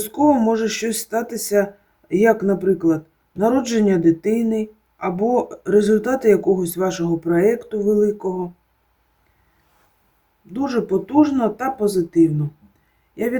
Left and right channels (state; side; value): identical; both; correlation 1.00